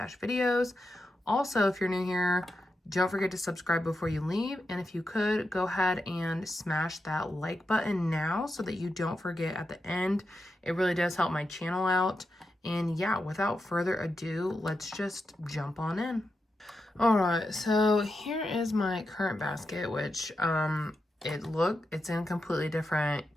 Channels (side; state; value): both; normal; correlation 0.87